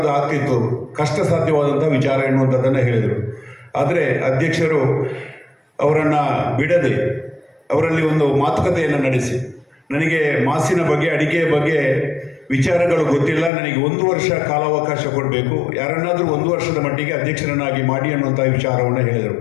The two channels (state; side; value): drops out; right; at 13.5 s